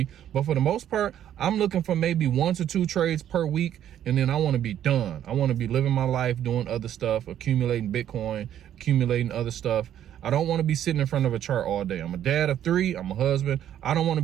But for the most part, I'm looking for maybe 1 to 2 trades per week, and then I want to be done. I want to be living my life, doing other stuff, accumulating Bitcoin, accumulating other stuff. I don't want to be sitting in front of a chart all day. I'm a dad of 3, I'm a husband. I don't want to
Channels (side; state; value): left; quieter; 10.7 dB